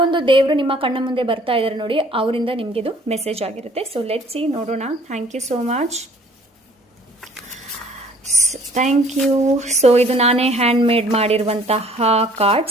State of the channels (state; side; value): normal; both; correlation 0.56